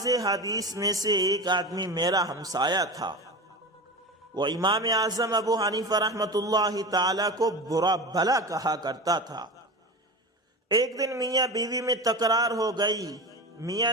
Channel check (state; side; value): normal; both; correlation 0.27